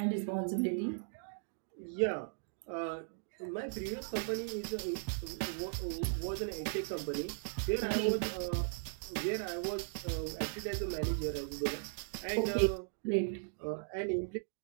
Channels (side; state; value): left; silent; digital silence